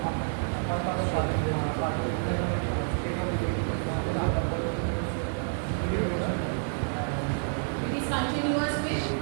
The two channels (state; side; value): silent; left; digital silence